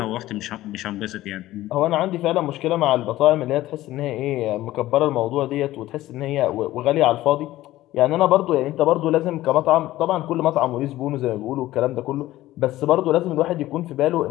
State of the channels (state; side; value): quieter; right; 15.8 dB